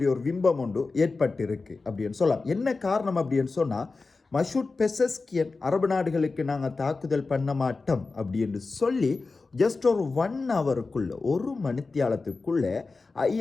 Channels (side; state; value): right; quieter; 3.9 dB